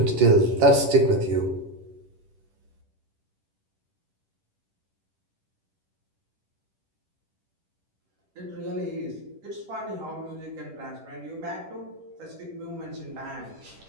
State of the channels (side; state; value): left; late; 10 ms